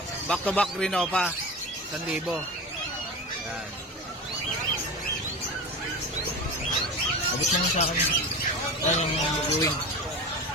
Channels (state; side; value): normal; both; correlation 0.29